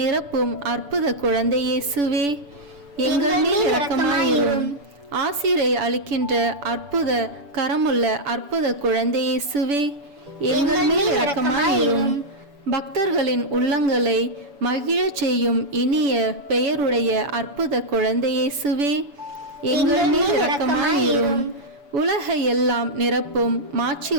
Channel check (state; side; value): late; left; 7.0 ms